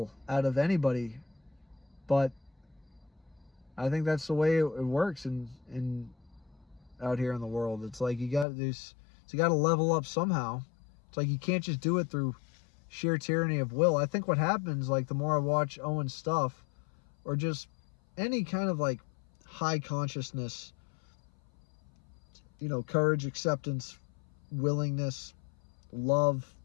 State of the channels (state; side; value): drops out; right; at 8.5 s